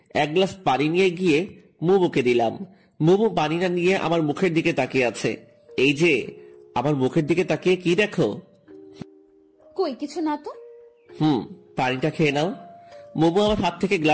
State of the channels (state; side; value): identical; both; correlation 1.00